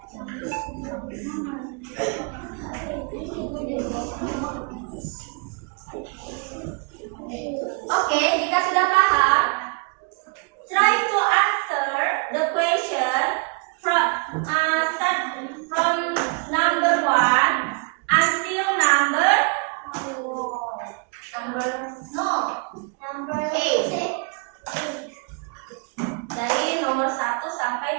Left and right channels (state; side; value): quieter; left; 35.0 dB